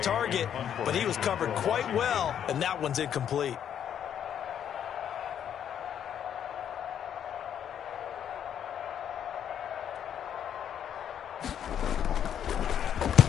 but he was covered quite well, and that one's incomplete.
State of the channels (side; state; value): right; quieter; 9.2 dB